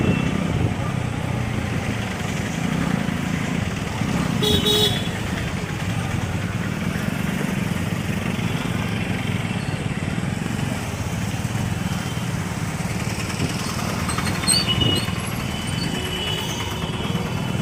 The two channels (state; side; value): identical; both; correlation 1.00